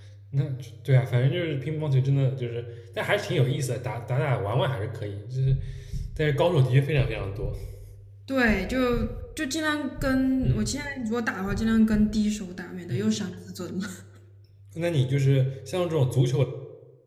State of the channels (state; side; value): identical; both; correlation 1.00